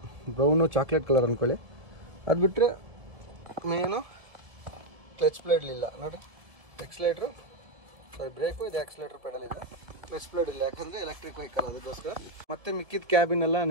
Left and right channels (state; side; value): late; left; 1.9 ms